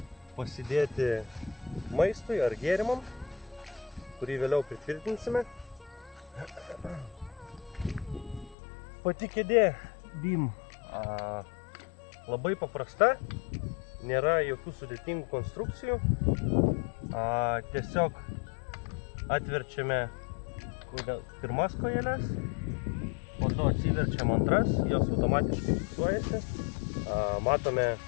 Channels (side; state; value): right; drops out; at 8.6 s